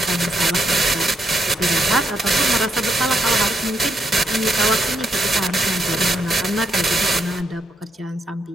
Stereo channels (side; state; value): both; normal; correlation 0.78